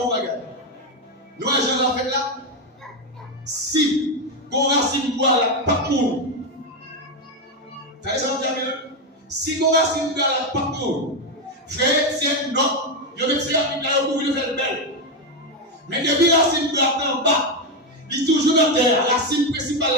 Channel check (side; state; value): both; normal; correlation 0.08